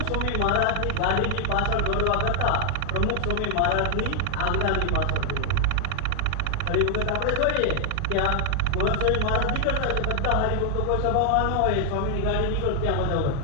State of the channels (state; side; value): different; both; correlation 0.00